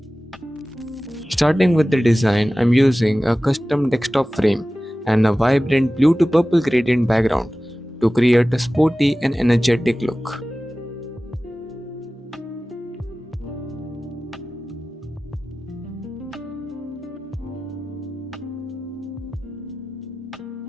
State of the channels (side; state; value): both; normal; correlation 0.96